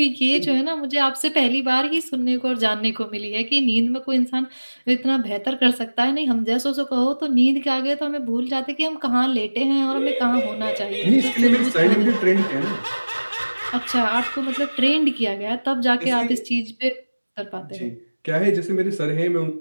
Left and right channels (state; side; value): inverted; both; correlation -1.00